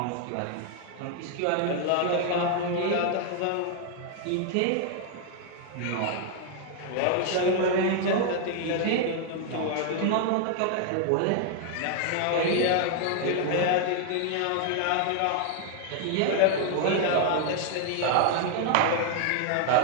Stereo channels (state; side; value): different; both; correlation 0.00